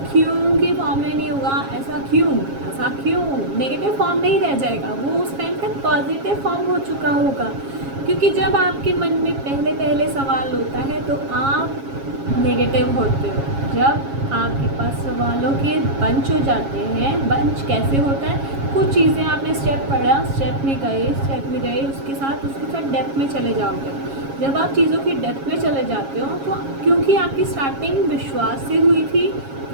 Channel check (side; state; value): left; late; 7.3 ms